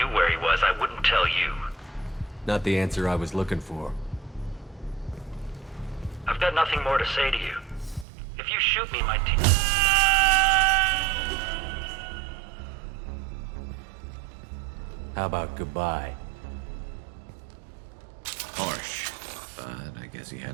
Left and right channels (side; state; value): left; drops out; at 8.1 s